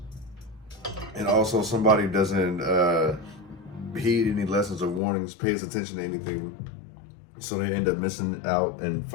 And also somebody doesn't heed any lessons or warnings, pays attention to anything. So they end up missing out and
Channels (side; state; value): right; drops out; at 5.0 s